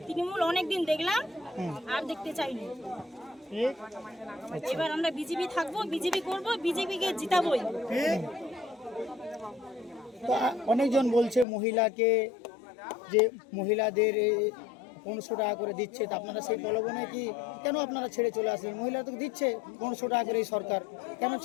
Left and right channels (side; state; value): right; drops out; at 11.5 s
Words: তৃণমূল অনেকদিন দেখলাম, আর দেখতে চাইনি। এবার আমরা বিজেপি থাকবো, বিজেপি করব, বিজেপিকে জিতাবই। তো অনেকজন বলছে মহিলাকে, যে মহিলাদের 1500 টাকা করে দিচ্ছে, তা আপনারা সেই প্রলোভনে কি কেন আপনারা ছেড়ে চলে আসলেন? মহিলা তো দিচ্ছে 1500 টাকা করে এই সরকার, কেন